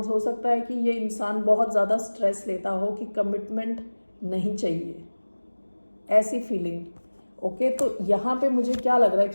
हो सकता है कि ये इंसान बहुत ज़्यादा स्ट्रेस लेता हो कि कमिटमेंट नहीं चाहिए, ऐसी फीलिंग। ओके, तो यहाँ पे मुझे क्या लग रहा है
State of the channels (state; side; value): inverted; both; correlation -1.00